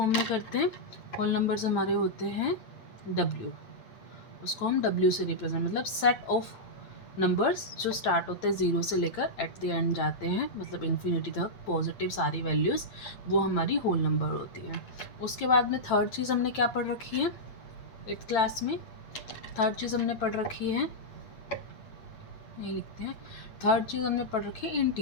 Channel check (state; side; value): late; right; 8.9 ms